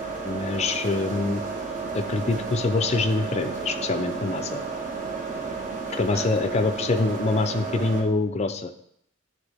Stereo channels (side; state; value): both; normal; correlation 0.52